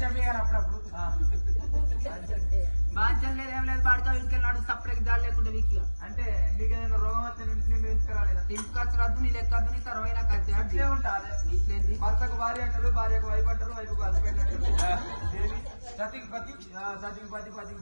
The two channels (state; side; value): inverted; both; correlation -1.00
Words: అప్పుడప్పుడు బాధ్యం లేదు ఏం లేదు పాడుతా ఇంకెళ్ళాడు సపరేట్ దాడి లేకుండా వీక్గా అంటే నీకేదైనా రోగం వస్తే నేను ఇంటికి ఇంటికొచ్చు రద్దు నీ లెక్కద్దు నీ తర్వాత నాకు ఇట్లే ఉంటాది ఇట్లేంది భర్తకు భార్య అంటారు భార్యకు వైపు అంటారు వైపుకు హస్బెండ్ అంటారు దేవి సతికి పతి సతికి పతి